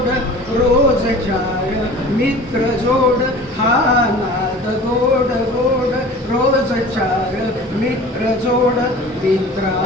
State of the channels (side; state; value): both; normal; correlation 0.41